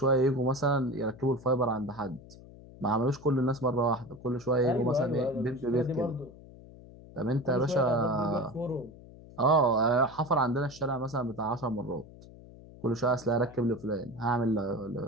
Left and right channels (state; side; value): noise; left; hum, 19 dB below the sound